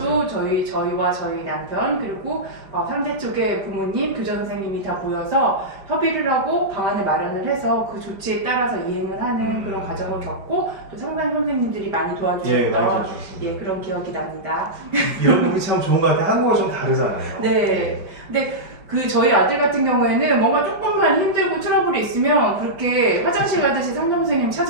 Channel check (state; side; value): late; left; 5.1 ms